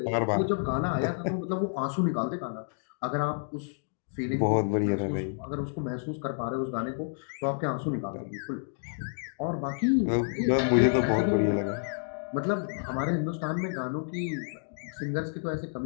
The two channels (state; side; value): silent; right; digital silence